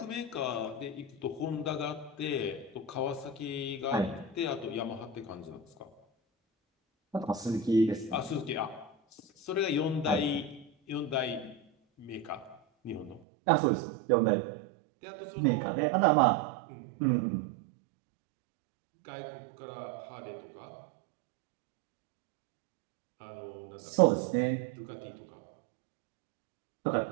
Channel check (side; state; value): left; drops out; at 13.2 s